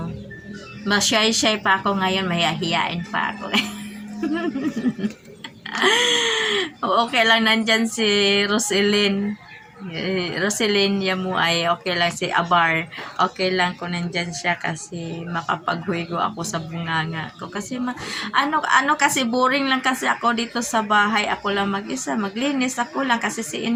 Mashy-shy pa ako ngayon, mahihiyain pa ako. Okay lang, nandyan si Roselyn Yamu ay okay lang, si Abar okay lang kung nandyan siya kasi makapaghuigo ako sa bunganga ko kasi kasi boring lang kasi ako dito sa bahay, ako lang mag-isa, maglinis ako lang kasi si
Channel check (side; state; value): both; identical; correlation 1.00